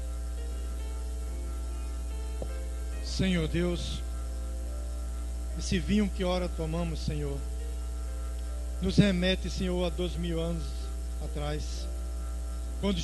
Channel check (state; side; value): identical; both; correlation 1.00